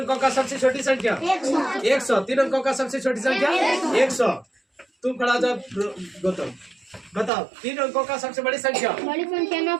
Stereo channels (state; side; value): drops out; left; at 7.3 s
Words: का सबसे छोटी संख्या 100। 3 अंकों का सबसे छोटी संख्या 100। तुम खड़ा जाओ गौतम, बताओ। 3 अंकों का सबसे बड़ी संख्या बड़ी संख्या